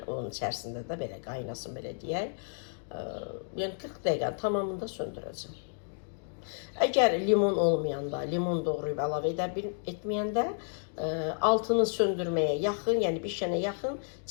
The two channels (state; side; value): silent; right; digital silence